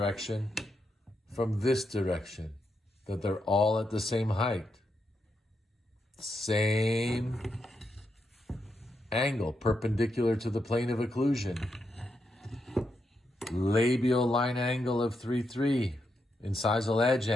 from this direction. That they're all at the same height. Same angle, perpendicular to the plane of occlusion. Labial line angle of 3-3. Incisal edge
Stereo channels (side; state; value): both; normal; correlation 0.83